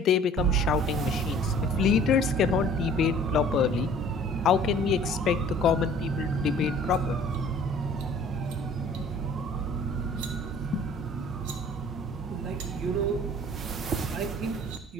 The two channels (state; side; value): normal; both; correlation 0.51